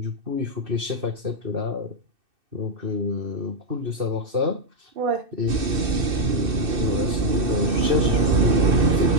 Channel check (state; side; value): late; left; 2.6 ms